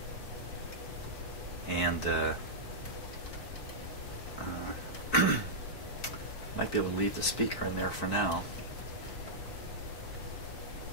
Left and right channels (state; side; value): late; right; 4.5 ms